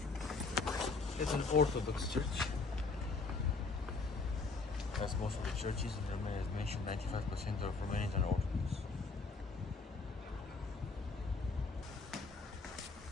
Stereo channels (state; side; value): quieter; right; 4.1 dB